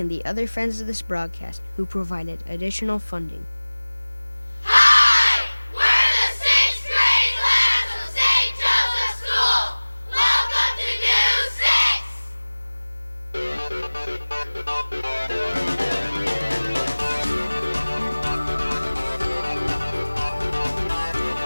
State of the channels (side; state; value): both; inverted; correlation -1.00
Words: the other friends of this broadcast who provided additional funding. Hi! We're the sixth grade class of St. Joseph's School. Welcome to News 6.